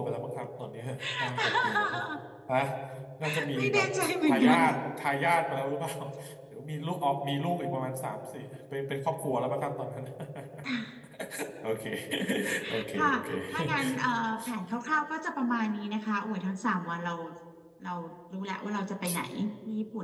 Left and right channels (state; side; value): identical; both; correlation 1.00